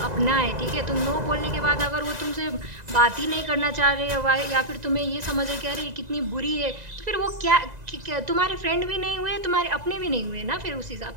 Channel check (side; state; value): left; late; 2.0 ms